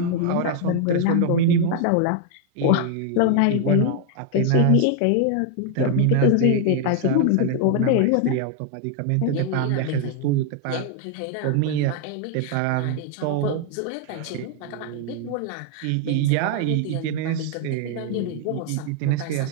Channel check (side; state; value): both; different; correlation 0.00